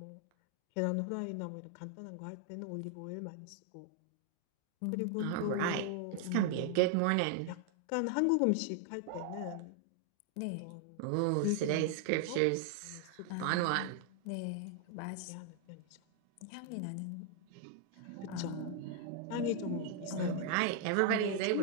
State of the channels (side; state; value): both; different; correlation 0.00